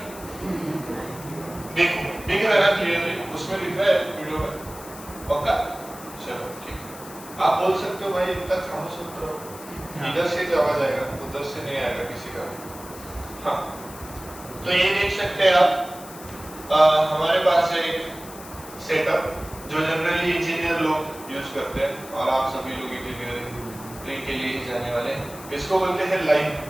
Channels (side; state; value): left; noise; hiss, 16 dB below the sound